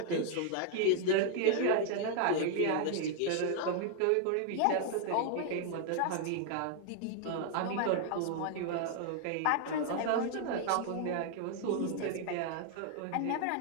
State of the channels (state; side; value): different; both; correlation 0.00